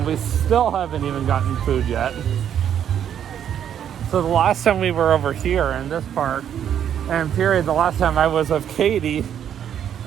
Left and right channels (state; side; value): quieter; left; 9.4 dB